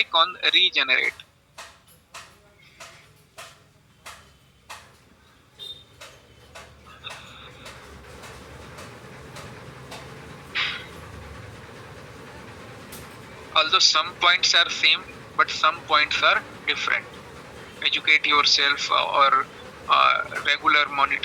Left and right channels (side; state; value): both; identical; correlation 1.00